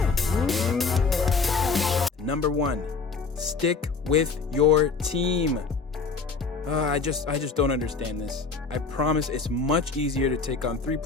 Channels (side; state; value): right; quieter; 4.7 dB